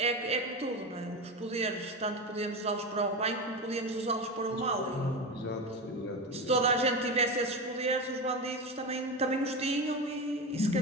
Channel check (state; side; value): normal; both; correlation 0.20